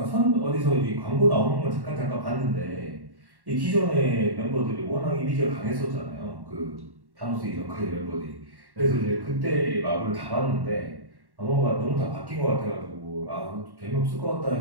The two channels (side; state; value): left; late; 1.1 ms